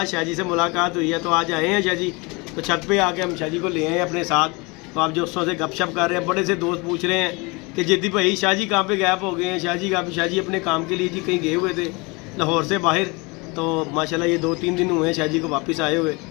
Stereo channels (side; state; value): right; quieter; 27.2 dB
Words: शाह जी से मुलाकात हुई है। तो आज आए हैं शाह जी, तो छत पे आके हम शाह जी को ले आए अपने साथ। तो आप दोस्तों से गपशप कर रहे हैं, बड़े से दोस्त पूछ रहे हैं कि जिद्दी भाई शाह जी कहाँ पे गैप हो गए हैं। शाह जी अपने काम के लिए जी कहीं गए हुए थे लाहौर से बाहर। तो माशाल्लाह ये 2-3 दिन हुए हैं शाह जी को वापस आए हुए।